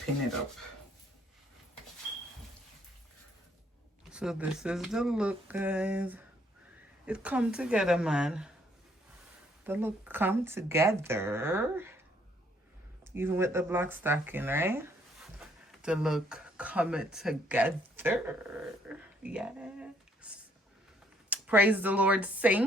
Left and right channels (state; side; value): normal; both; correlation 0.67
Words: it up. So this is the look, guys. It come together, man. The look come together. Even with the black stocking, right? The look coming together. Yes. Praise the Lord,